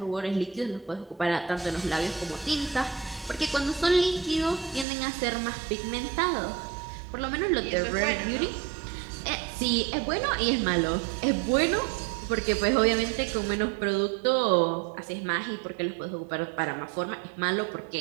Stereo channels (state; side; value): drops out; left; at 4.9 s